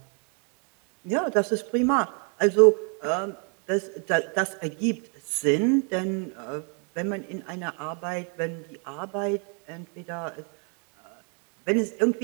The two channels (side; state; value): left; quieter; 38.3 dB